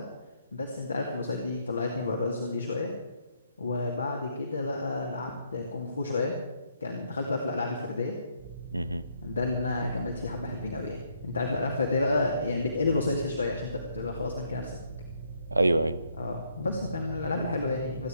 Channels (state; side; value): inverted; both; correlation -0.72